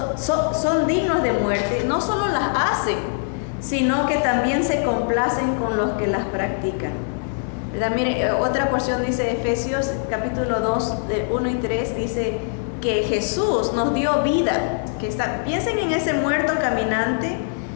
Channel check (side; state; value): right; silent; 64 dB below the other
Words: dignos de muerte, no solo las hacen, sino que también se complacen con los que las practican. ¿verdad? Mire, otra porción dice Efesios capítulo 2, de 1 y 3, dice que Jesús nos dio vida. Piensen en ese muerto caminante.